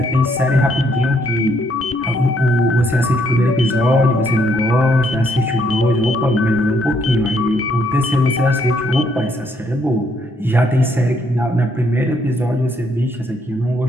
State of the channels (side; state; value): both; normal; correlation 0.71